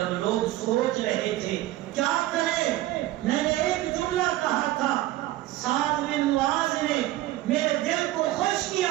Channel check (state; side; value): quieter; left; 15.7 dB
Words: لوگ سوچ رہے تھے کیا کریں، میں نے ایک جملہ کہا تھا، سعد بن معاذ نے میرے دل کو خوش